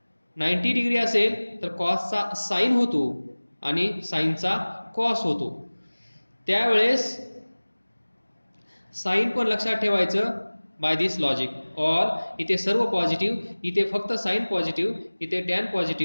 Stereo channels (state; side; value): inverted; both; correlation -1.00